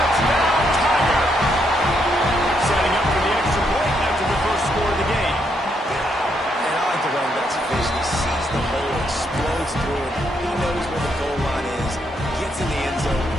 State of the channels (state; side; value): normal; both; correlation 0.76